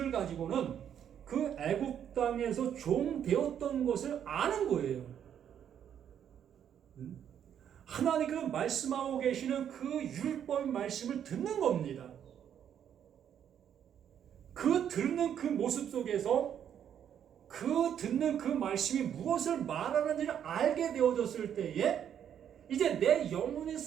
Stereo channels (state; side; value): quieter; left; 9.2 dB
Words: 가지고는 그 애굽 땅에서 종 되었던 것을 아는 거예요. 하나님께서 말씀하고 계시는 그 율법 말씀을 듣는 겁니다. 그 듣는 그 모습 속에서 그 듣는 그 말씀이 무엇을 말하는지를 알게 되어졌을 때에 이제 내 영혼이